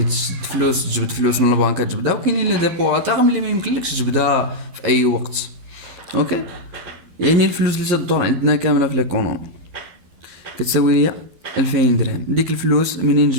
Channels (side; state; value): left; late; 12 ms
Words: تشد فلوس تجبد فلوس من البنك تجبدها، وكاينين لي ديبو تاغ اللي ما يمكنلكش تجبدها في اي وقت. اوكي، يعني الفلوس اللي تدور عندنا كامله في ليكونومي كتساوي ليا 2000 درهم. ديك الفلوس منين